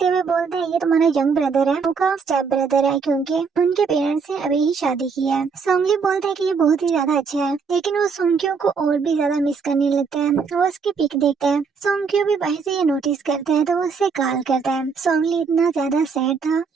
हुए बोलता है ये तुम्हारा यंग ब्रदर है, उनका स्टेप ब्रदर है क्योंकि उनके पेरेंट्स ने अभी ही शादी की है। सोंगली बोलता है कि ये बहुत ही ज्यादा अच्छा है लेकिन वो सोंग्क्यू को और भी ज्यादा मिस करने लगता है। वो उसकी पिक देखता है। सोंग्क्यू भी बाहर से ये नोटिस करता है तो वो उससे कॉल करता है। सोंगली इतना ज्यादा सैड था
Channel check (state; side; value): quieter; left; 5.4 dB